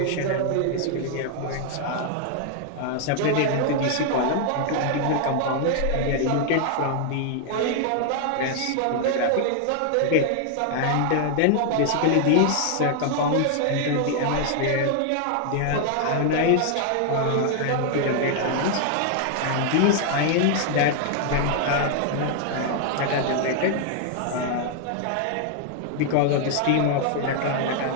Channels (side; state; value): both; different; correlation 0.00